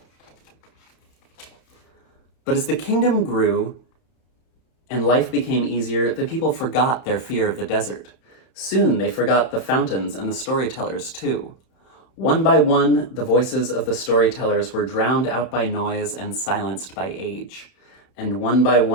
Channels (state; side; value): late; right; 31 ms